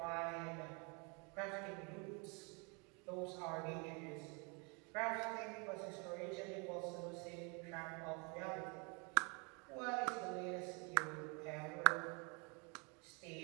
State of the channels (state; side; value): quieter; left; 33.1 dB